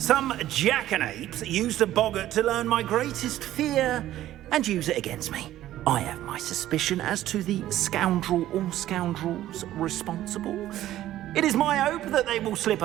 jackanapes used a boggart to learn my greatest fear and use it against me. I have my suspicion as to the scoundrel or scoundrels responsible. It is my hope that they will slip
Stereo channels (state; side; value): quieter; left; 13.6 dB